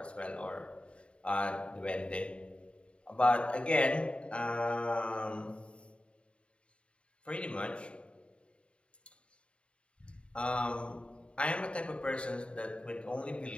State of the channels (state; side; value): late; right; 0.057 ms